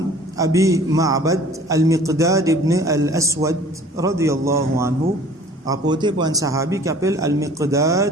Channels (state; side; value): normal; both; correlation 0.50